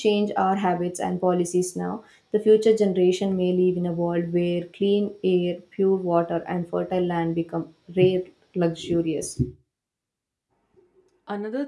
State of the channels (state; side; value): identical; both; correlation 1.00